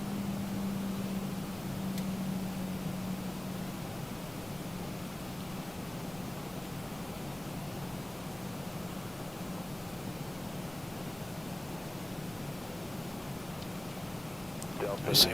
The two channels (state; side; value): noise; right; hum, 21 dB below the sound